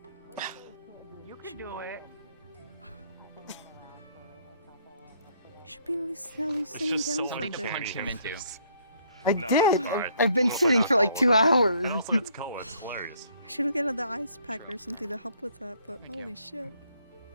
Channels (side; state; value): both; inverted; correlation -0.65